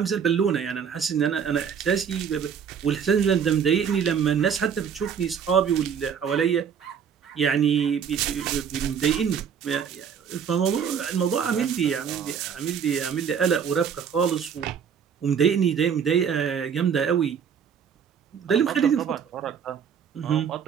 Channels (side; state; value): left; quieter; 7.4 dB